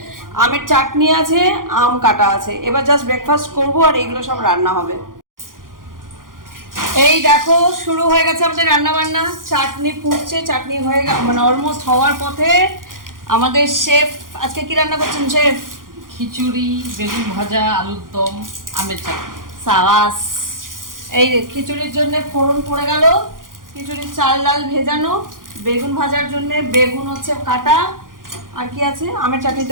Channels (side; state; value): left; late; 0.90 ms